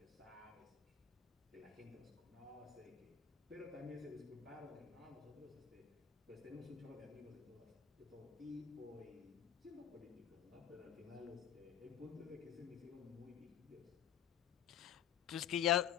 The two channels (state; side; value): quieter; right; 9.6 dB